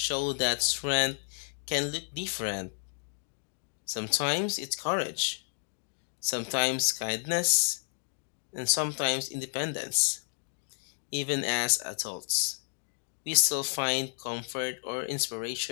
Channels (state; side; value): silent; right; digital silence